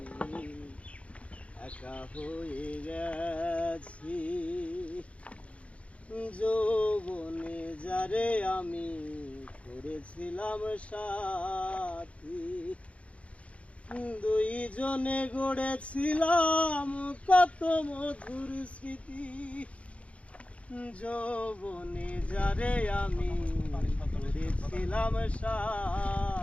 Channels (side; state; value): right; late; 0.063 ms